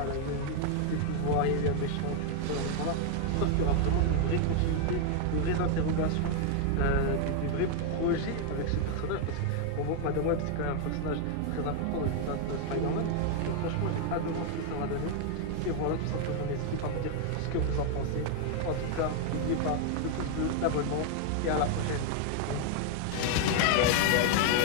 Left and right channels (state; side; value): different; both; correlation 0.00